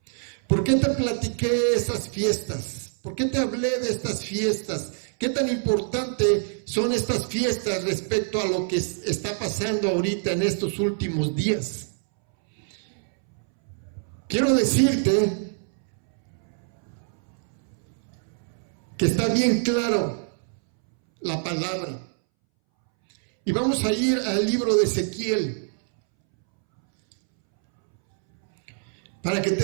¿Por qué te platiqué esas fiestas? ¿Por qué te hablé de estas fiestas? ¿Qué tan importante son estas fiestas respecto a lo que está pasando ahorita en estos últimos días? Quiero decirte que está bien claro la palabra. Y vamos a ir al libro de Ezequiel para que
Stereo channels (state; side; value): silent; left; 62 dB below the other